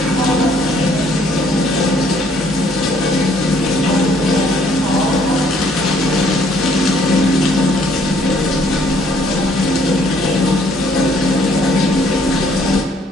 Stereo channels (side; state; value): both; normal; correlation 0.64